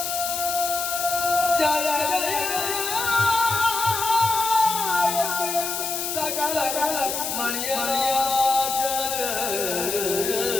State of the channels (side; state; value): left; noise; hiss, 3 dB below the sound